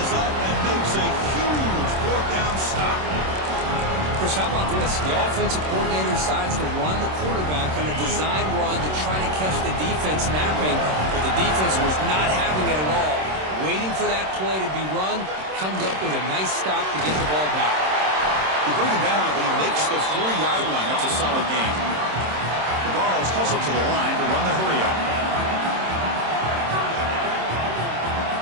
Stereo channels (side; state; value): left; late; 26 ms